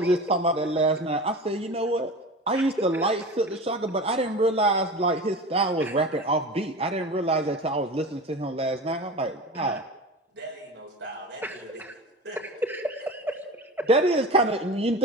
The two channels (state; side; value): normal; both; correlation 0.31